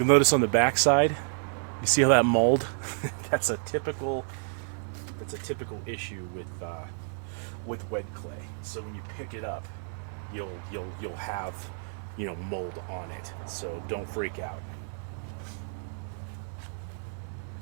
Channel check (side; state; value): left; silent; digital silence